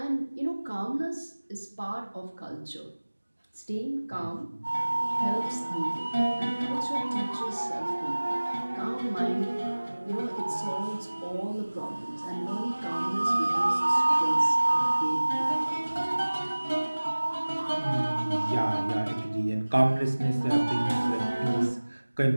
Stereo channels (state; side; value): inverted; both; correlation -1.00